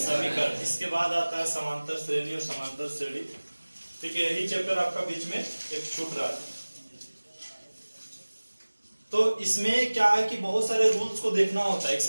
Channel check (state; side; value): inverted; both; correlation -1.00